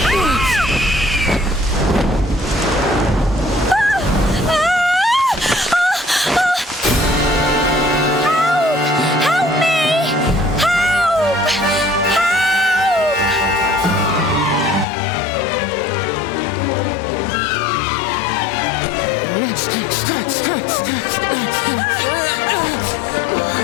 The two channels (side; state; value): right; drops out; at 14.9 s